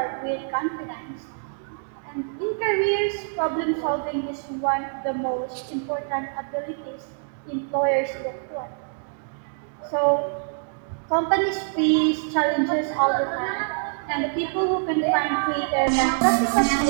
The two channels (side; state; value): left; silent; 62 dB below the other